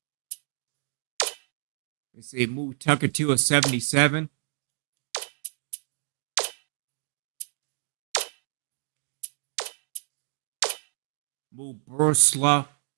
Let's see, move Tucker to a 77. Move Borislav,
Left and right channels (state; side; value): silent; left; digital silence